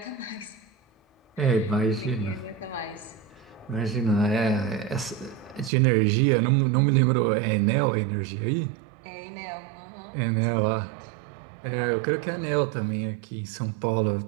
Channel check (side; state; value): left; drops out; at 5.7 s